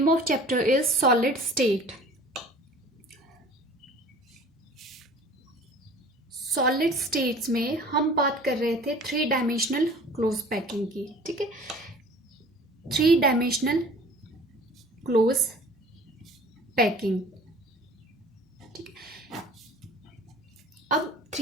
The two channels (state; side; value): normal; both; correlation 0.46